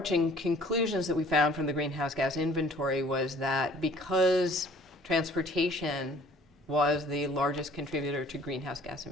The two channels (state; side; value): normal; both; correlation 0.53